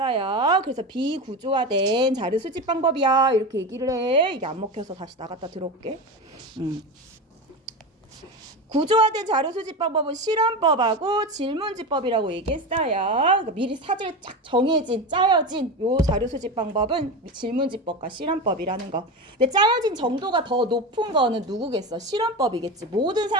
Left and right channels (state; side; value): normal; both; correlation 0.22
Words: 그래서 비구조화된 자료 수집 방법이야 이렇게 얘기를 해. 이게 안 먹혀서 다시 나갔다 들어올게. 구조화된 자료 수집 방법은 실험법하고 질문지법이라고 얘기했어요. 그러니까 미리 사전에 쫙 짜여진 요 자료 수집 방법은 질문지법과 실험법이라는 거. 근데 짜여진 정도가 더 높은 거는 누구겠어? 실험법이겠지. 모든